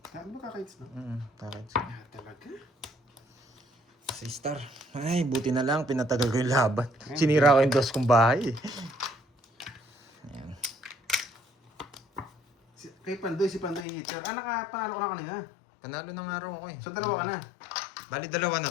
Ano ba kaka-hits na? Kaka-hits. Ah, talaga? Sa star. Ay, buti na lang. Pinatagal ko yung laban. Sinira ko yung dos kong bahay. Ayan. Kay Pandoy, si Pandoy hitter. Nakapanalo ko na kanina. Panalo ng araw ako eh. So, dalawa ka na. Bali, dalawa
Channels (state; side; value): drops out; right; at 13.9 s